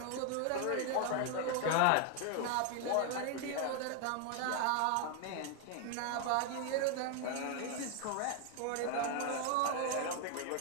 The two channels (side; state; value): both; different; correlation 0.01